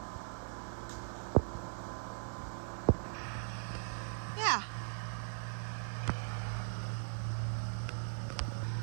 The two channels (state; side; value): silent; left; digital silence